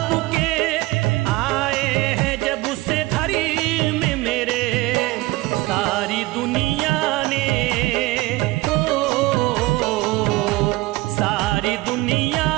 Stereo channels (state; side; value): quieter; left; 20.4 dB